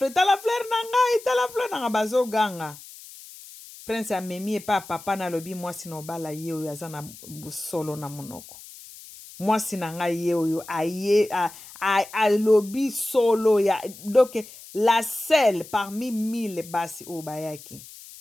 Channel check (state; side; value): noise; left; hiss, 17 dB below the sound